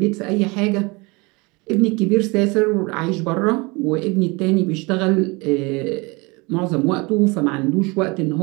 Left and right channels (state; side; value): quieter; left; 26.5 dB